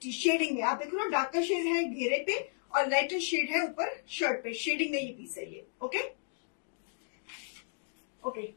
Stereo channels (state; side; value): silent; right; digital silence